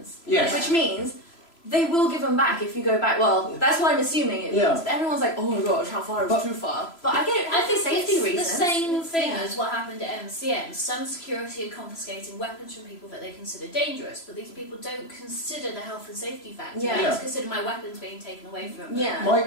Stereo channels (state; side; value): late; right; 3.0 ms